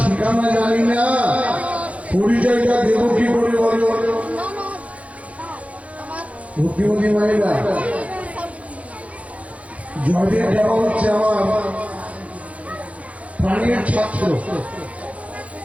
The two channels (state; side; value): late; left; 0.065 ms